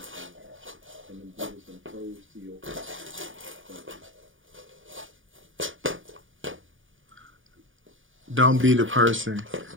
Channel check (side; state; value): left; late; 0.57 ms